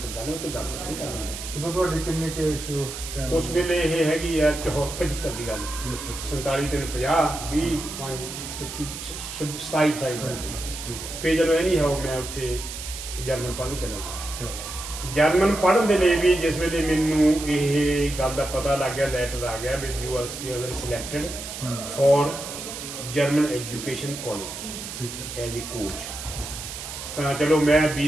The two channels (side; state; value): right; noise; hiss, 9 dB below the sound